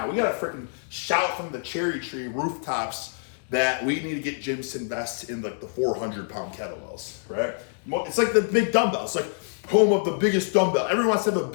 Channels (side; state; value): right; silent; digital silence